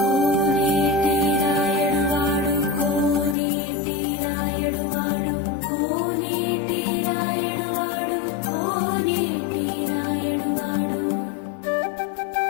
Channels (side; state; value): right; drops out; at 3.4 s